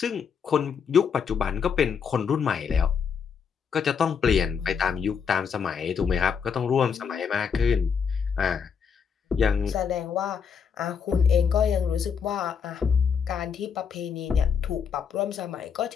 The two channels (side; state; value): right; quieter; 6.6 dB